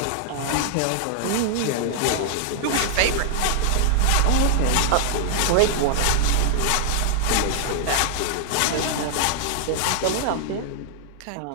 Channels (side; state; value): both; different; correlation -0.01